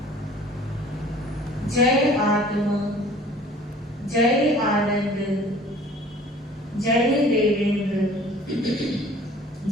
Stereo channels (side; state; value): both; normal; correlation 0.49